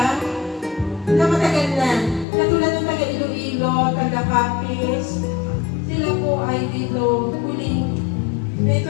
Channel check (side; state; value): right; drops out; at 2.2 s